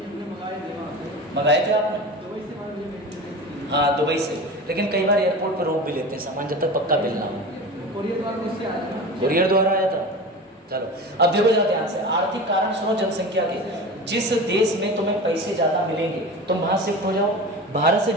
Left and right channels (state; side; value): normal; both; correlation 0.31